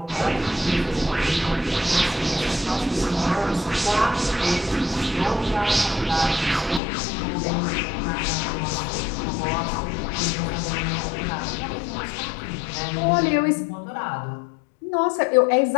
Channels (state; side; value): drops out; right; at 6.8 s